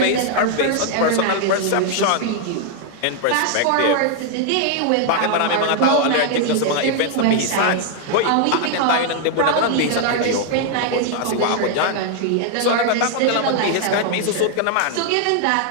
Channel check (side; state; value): both; different; correlation 0.00